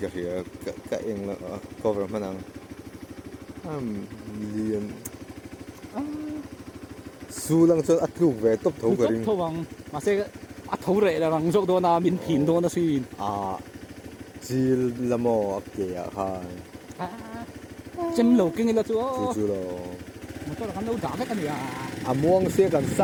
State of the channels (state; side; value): identical; both; correlation 1.00